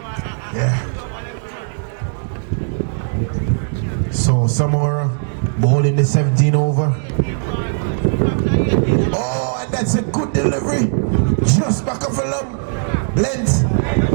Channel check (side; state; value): left; silent; digital silence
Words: Yeah. So Samora bowling the 17 over. Oh, and that's a good delivery. Just back of a length.